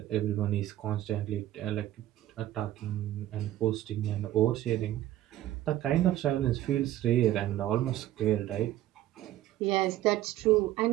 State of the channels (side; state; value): left; quieter; 13.7 dB